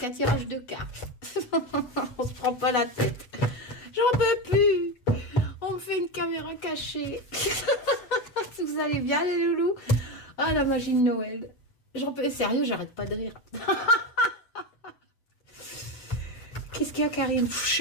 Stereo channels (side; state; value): right; late; 8.1 ms